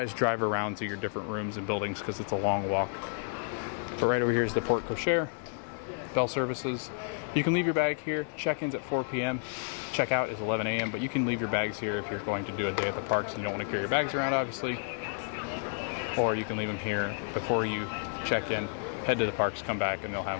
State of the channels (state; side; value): silent; right; 57 dB below the other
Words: drive around to your different rooms and buildings because it's a long walk. But right over here is the Port Cochere, Bell Services. You can leave your bag here. Check-in's at 4 p.m. Check-out is 11 a.m. But you can leave your bags here if you're going to do a day at the parks and you don't want to carry your bags around, obviously. Or you can leave them here before you check in. Head to the parks, come back, and they'll have